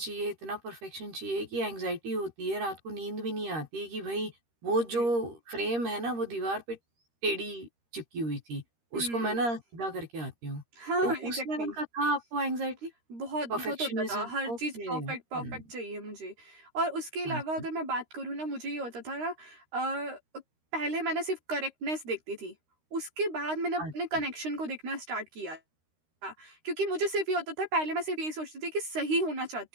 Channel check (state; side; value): late; left; 13 ms